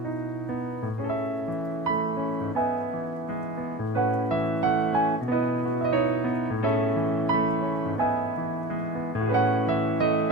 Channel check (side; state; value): both; normal; correlation 0.34